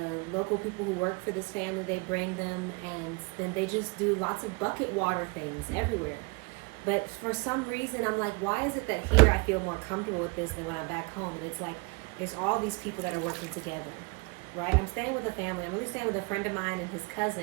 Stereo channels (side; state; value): left; quieter; 29.3 dB